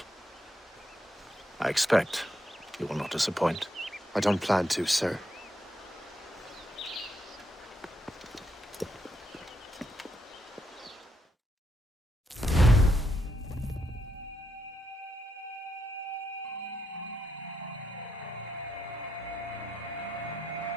I expect you will not disappoint. I don't plan to, sir.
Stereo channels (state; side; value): normal; both; correlation 0.79